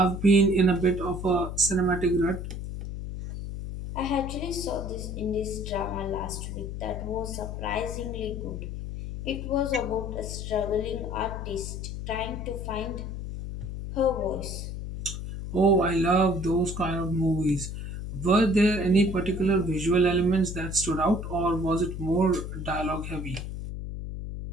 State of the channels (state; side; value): noise; left; hum, 6 dB below the sound